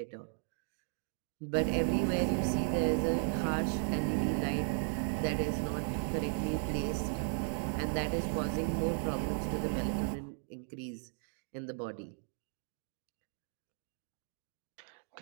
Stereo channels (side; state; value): left; silent; 54 dB below the other